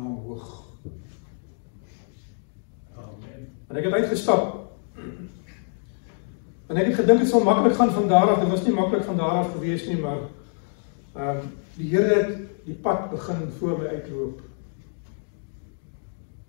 hoog. Amen. En ek het uitgestap. En ek het gedink het sal maklik gaan van daar af. Dit was nie maklik van daar af gewees nie, maar die Here het die pad begin voor my uitloop.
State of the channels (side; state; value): right; silent; 61 dB below the other